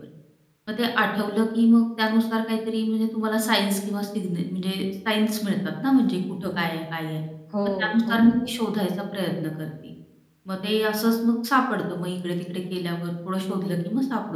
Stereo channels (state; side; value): identical; both; correlation 1.00